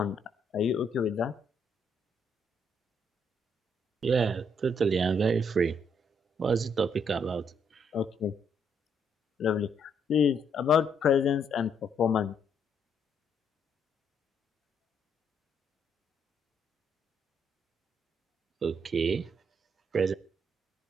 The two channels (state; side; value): normal; both; correlation 0.72